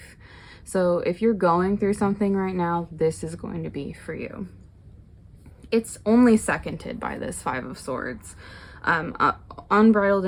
So if you're going through something right now, this is going to be for you. It's only seconded by this Five of Swords. Unbridled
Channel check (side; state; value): both; identical; correlation 1.00